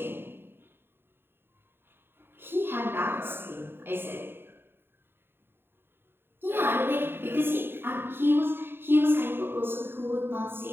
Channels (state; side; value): late; left; 0.11 ms